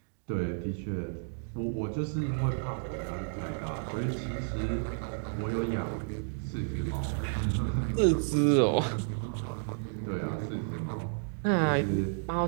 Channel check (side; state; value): left; silent; digital silence